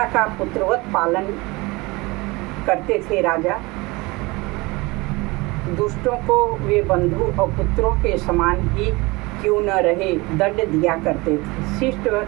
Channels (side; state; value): left; quieter; 23.7 dB